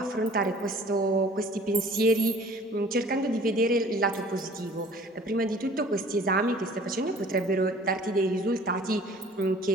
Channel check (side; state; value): both; normal; correlation 0.49